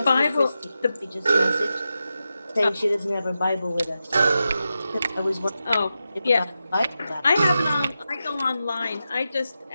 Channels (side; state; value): both; inverted; correlation -0.90